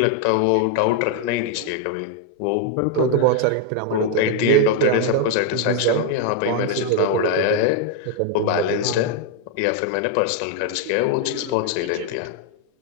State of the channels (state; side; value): different; both; correlation 0.01